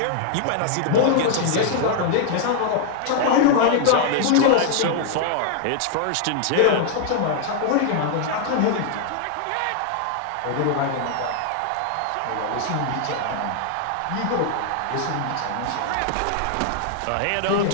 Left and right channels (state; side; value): different; both; correlation 0.00